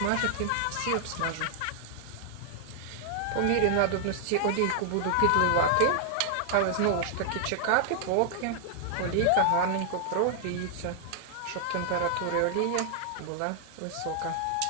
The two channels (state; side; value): different; both; correlation -0.01